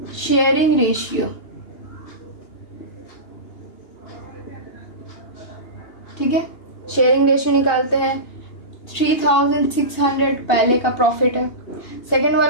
शेयरिंग रेशियो, ठीक है, शेयरिंग रेशियो निकालते हैं। 3,600 पहले का प्रॉफिट है, सेकंड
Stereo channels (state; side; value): late; right; 2.8 ms